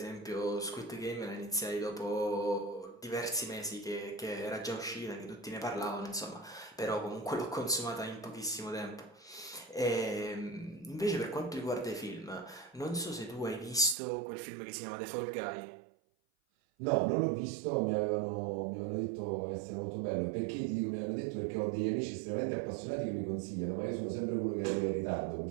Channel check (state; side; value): drops out; left; at 14.0 s